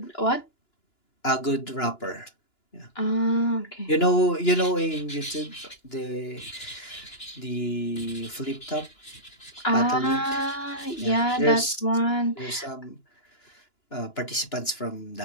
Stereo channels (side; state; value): right; late; 2.9 ms